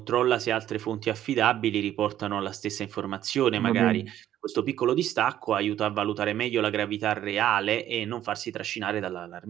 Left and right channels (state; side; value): quieter; left; 11.9 dB